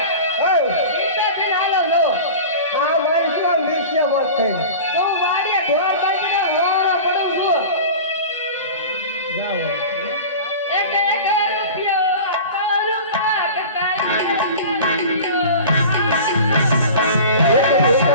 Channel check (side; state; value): both; inverted; correlation -0.35